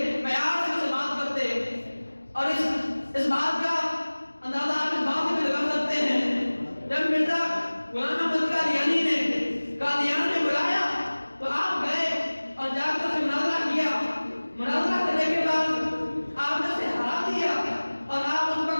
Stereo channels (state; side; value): inverted; both; correlation -1.00